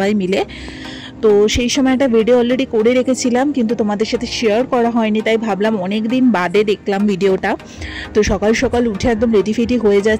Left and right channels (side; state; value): both; identical; correlation 1.00